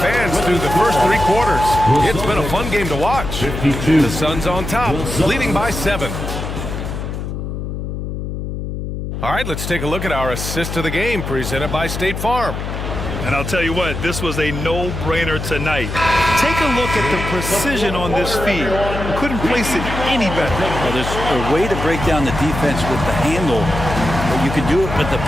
fans through the first 3 quarters. It's been a fun game to watch. The Suns on top, leading by 7. All right, let's take a look at our assist of the game presented by State Farm. And I'll tell you what, this was a no-brainer tonight. Take a look at the precision on this feed. Couldn't place it any better. Well, there's a way to break down the defense with the handle, but you can do it with the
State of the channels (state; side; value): noise; left; hum, 5 dB below the sound